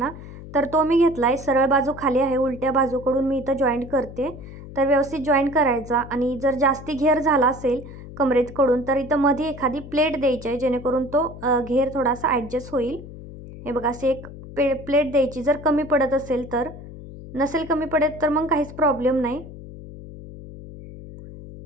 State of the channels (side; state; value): left; noise; hum, 14 dB below the sound